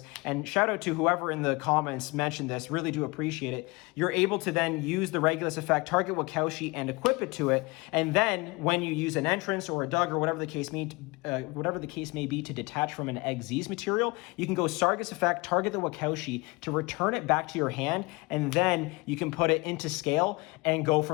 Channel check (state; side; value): quieter; right; 25.6 dB